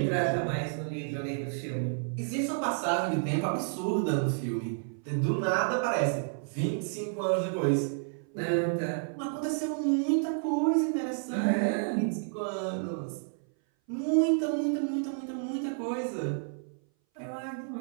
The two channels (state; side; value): silent; left; 58 dB below the other